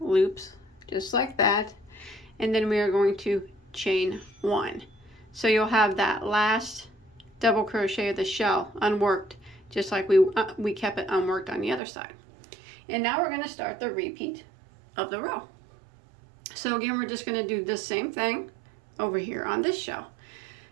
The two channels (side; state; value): left; drops out; at 11.8 s